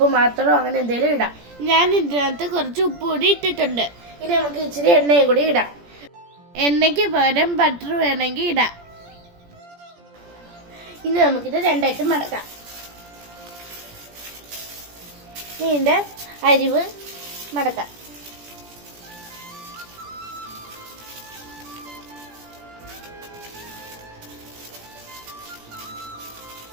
മാത്രമോ അങ്ങനെ എന്തെങ്കിലും ഇടാം. ഞാൻ ഇതിനകത്ത് കുറച്ച് ഉപ്പ് പൊടി ഇട്ടിട്ടുണ്ട്. ഇനി നമുക്ക് ഇച്ചിരി എണ്ണയും കൂടി ഇടാം. എണ്ണയ്ക്ക് പകരം ബട്ടർ വേണമെങ്കിൽ ഇടാം. ഇനി നമുക്കിത് രണ്ടായിട്ട് മടക്കാം. ഇതിൻ്റെ അരിവ് മടക്കാം.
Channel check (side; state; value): left; late; 17 ms